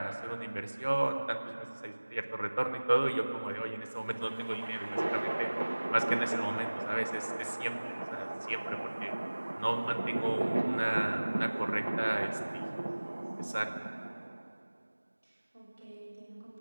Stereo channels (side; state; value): both; inverted; correlation -1.00